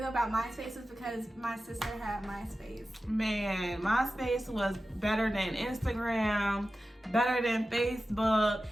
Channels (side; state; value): both; normal; correlation 0.94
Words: about MySpace was because my sister had MySpace. Man, MySpace was better than Instagram, better than Facebook.